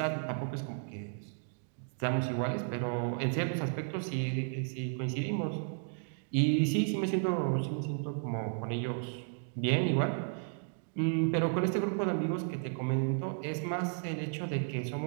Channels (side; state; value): left; silent; 55 dB below the other